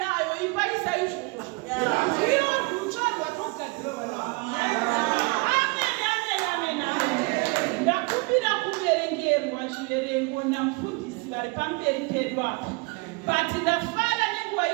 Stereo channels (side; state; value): left; quieter; 28.6 dB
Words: ipaisa izvozvo. Iyo rutsvarwa togadzirwa. Ndakumbira kuverengerwa zviverengo namufundisi vari pamberi pedu apa. But ndafara nenguva